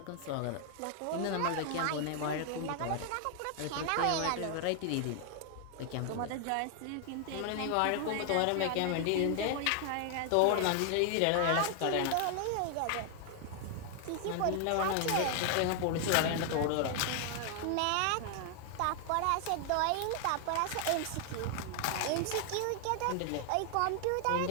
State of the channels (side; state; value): both; different; correlation 0.00